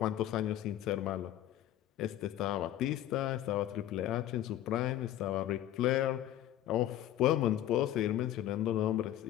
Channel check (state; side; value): quieter; right; 12.6 dB